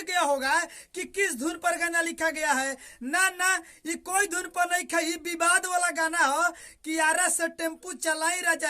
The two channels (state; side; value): identical; both; correlation 1.00